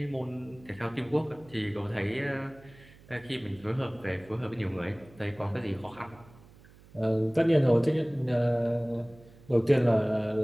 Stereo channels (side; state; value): right; noise; hum, 24 dB below the sound